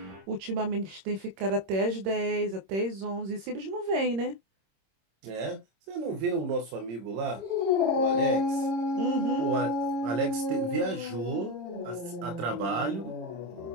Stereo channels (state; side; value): late; left; 26 ms